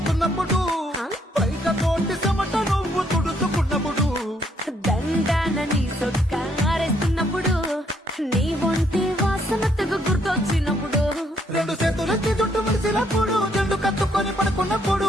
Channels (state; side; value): normal; both; correlation 0.71